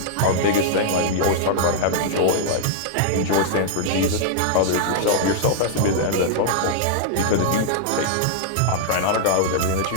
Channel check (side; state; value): both; different; correlation -0.01